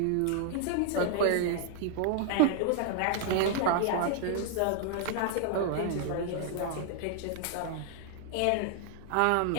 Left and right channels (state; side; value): different; both; correlation -0.01